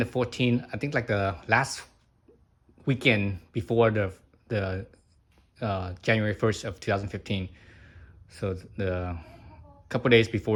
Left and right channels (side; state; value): both; identical; correlation 1.00